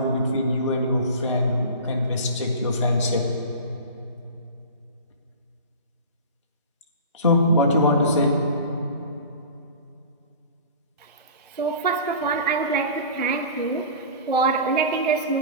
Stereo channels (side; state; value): both; inverted; correlation -0.36